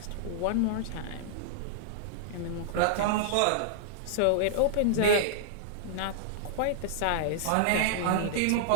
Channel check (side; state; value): both; different; correlation -0.01